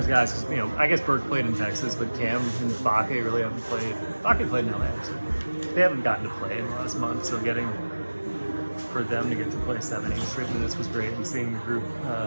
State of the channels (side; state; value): both; inverted; correlation -1.00